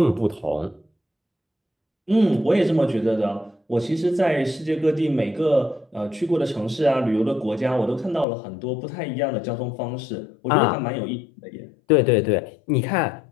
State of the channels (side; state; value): right; drops out; at 8.2 s